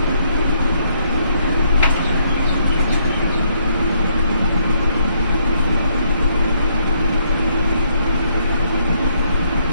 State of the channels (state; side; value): inverted; both; correlation -0.69